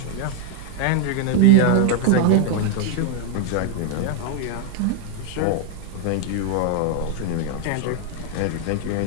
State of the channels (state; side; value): different; both; correlation 0.00